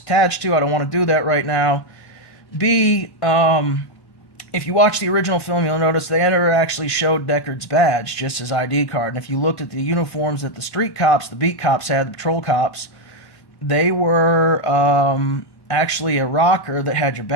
to. I don't want to do that right now. B, if you watch the original film, you'll notice they never actually showed Deckard's badge, just his ID card. And if you looked at the uniforms that the street cops, the beat cops had, the patrol cops, they were actually a rocker that had your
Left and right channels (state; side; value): late; right; 1.5 ms